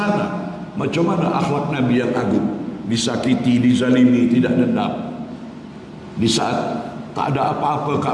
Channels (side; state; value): both; identical; correlation 1.00